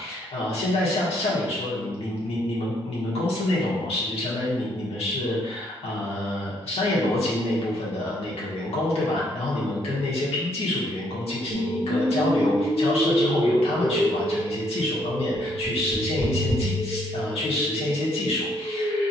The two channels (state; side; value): normal; both; correlation 0.69